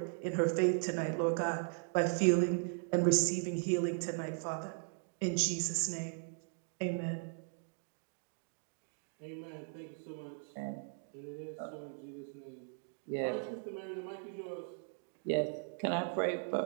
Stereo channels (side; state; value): left; silent; 53 dB below the other